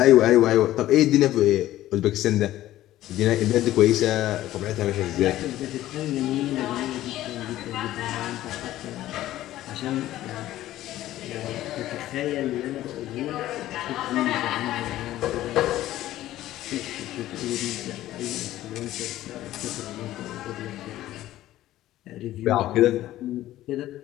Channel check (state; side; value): quieter; right; 14.5 dB